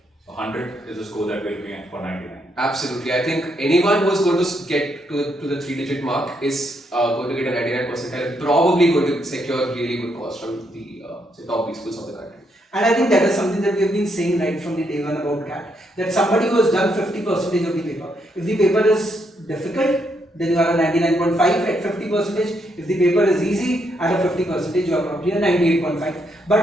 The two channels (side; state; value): both; normal; correlation 0.77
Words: So 100 is the score that we're looking at for 99. Absolutely. I think anyone who is going to get to the 3-digit mark is going to get a 99 percentile and probably going to secure really good calls from the say top B schools of the country. And I think that is something that we have been saying right from the day one about CAT. That somebody who has done 50% of the paper, if the paper is difficult, then you are a 99.5 at 50%. If the paper is easy, at a 50%, you are probably a 98.5.